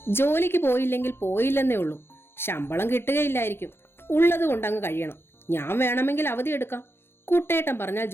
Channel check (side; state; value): right; late; 0.11 ms